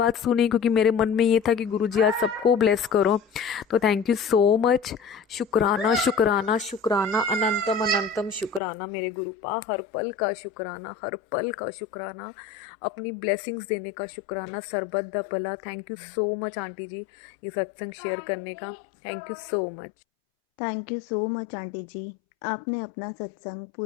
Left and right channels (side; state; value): right; drops out; at 8.6 s